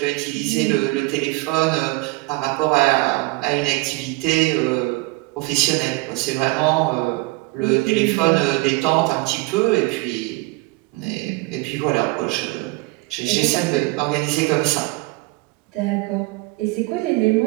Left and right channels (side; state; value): left; quieter; 22.7 dB